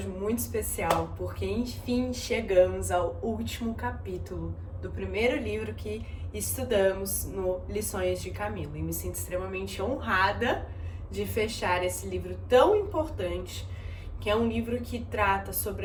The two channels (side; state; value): both; identical; correlation 1.00